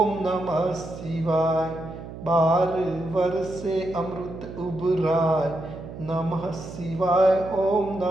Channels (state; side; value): noise; right; hum, 12 dB below the sound